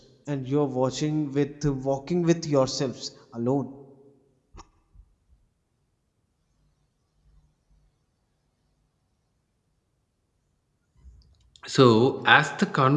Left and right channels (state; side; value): identical; both; correlation 1.00